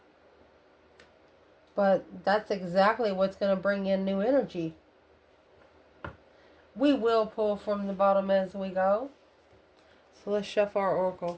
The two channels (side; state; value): both; identical; correlation 1.00